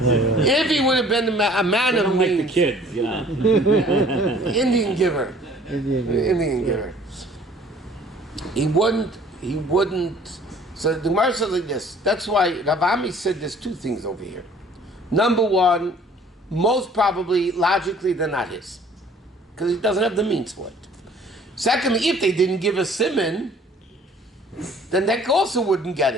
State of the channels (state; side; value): normal; both; correlation 0.54